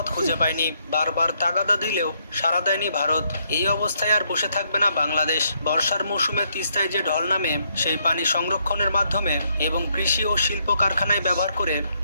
খুঁজে পায়নি। বারবার তাগাদা দিলেও সাড়া দেয়নি ভারত। এই অবস্থায় আর বসে থাকবে না বাংলাদেশ। বর্ষার মৌসুমে তিস্তায় যে ঢল নামে সেই পানি সংরক্ষণের মাধ্যমে এবং কৃষি ও শিল্প কারখানায় ব্যবহার করে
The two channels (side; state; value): both; inverted; correlation -0.74